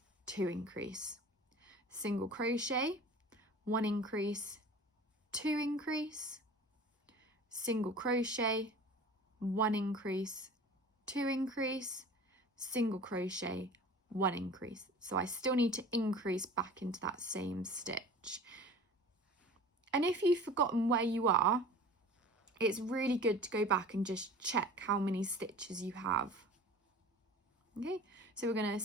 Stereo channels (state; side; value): normal; both; correlation 0.41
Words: 2 increase. Single crochet, 1 increase, 2 increase. Single crochet, 1 increase, 2 increase, single crochet, 1 increase. So I still need to increase back into that same stitch. And if you've forgotten where you are, it's really good to go back and just check how many stitches you have. Okay, so we're going to